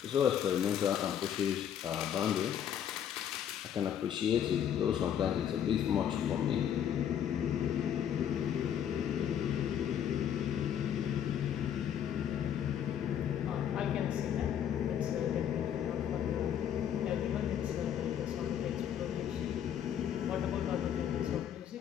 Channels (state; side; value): quieter; right; 9.4 dB